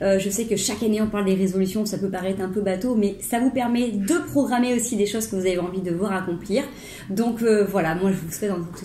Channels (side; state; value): both; identical; correlation 1.00